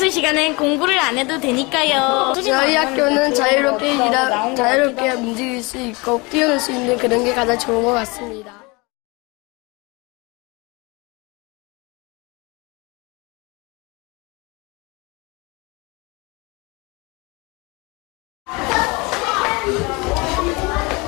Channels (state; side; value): quieter; right; 26.6 dB